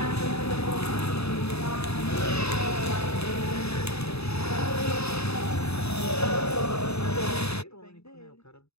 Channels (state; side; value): late; right; 0.79 ms